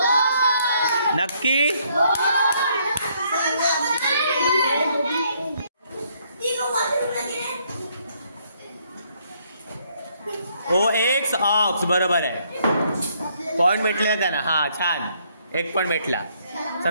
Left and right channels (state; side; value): inverted; both; correlation -0.69